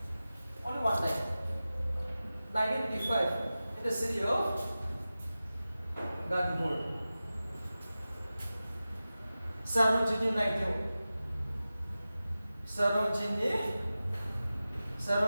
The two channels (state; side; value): inverted; both; correlation -0.95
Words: Only one time. 1925 in the city of Gandhipur. Sarojini Naidu. Sarojini